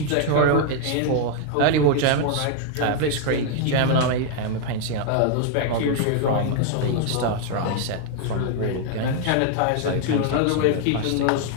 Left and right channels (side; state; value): both; different; correlation 0.00